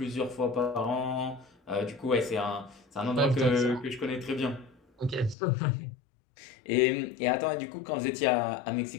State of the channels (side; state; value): right; drops out; at 5.4 s